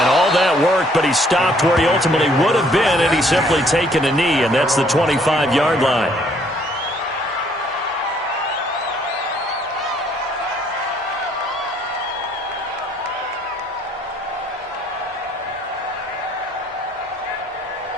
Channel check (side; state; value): both; normal; correlation 0.64